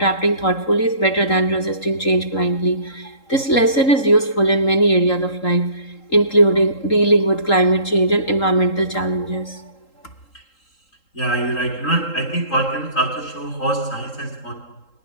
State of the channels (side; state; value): right; late; 3.8 ms